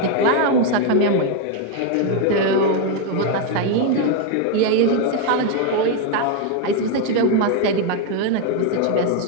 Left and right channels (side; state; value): both; different; correlation 0.01